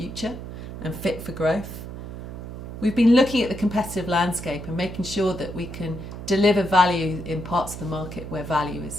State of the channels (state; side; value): noise; right; hum, 10 dB below the sound